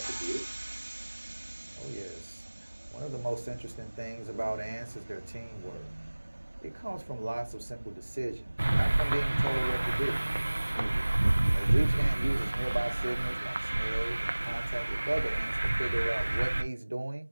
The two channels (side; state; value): both; inverted; correlation -1.00